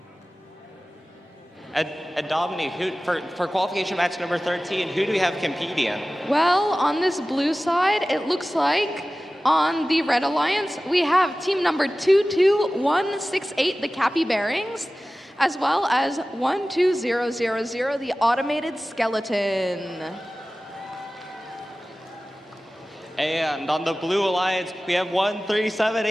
And Dominique, for qualification match number 13, who do we have competing? Well, on this blue side, it looks like on the Red Alliance, we have team number 22168, the Capybearings, as well as 12000, the Automated Skeleton. And on the Blue Alliance, we have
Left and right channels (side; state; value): both; normal; correlation 0.96